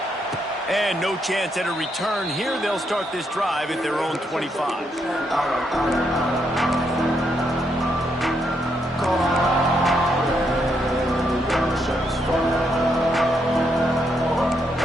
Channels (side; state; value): both; normal; correlation 0.77